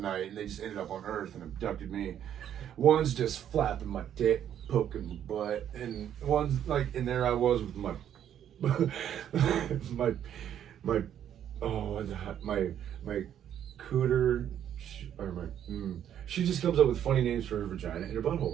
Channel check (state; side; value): quieter; left; 10.0 dB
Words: and they just ended up on Earth and abducted me. One's just flapping my dick, poking my butt, and one's like, and there I was with my my cooter or my. She just comes up with funny names for her vagina and her